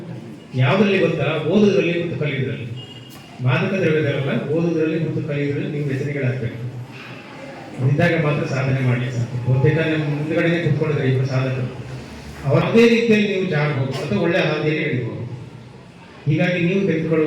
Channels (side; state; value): both; identical; correlation 1.00